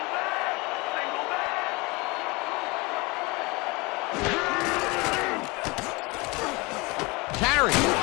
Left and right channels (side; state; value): right; quieter; 25.5 dB